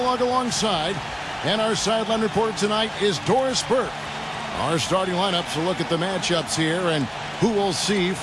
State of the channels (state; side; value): identical; both; correlation 1.00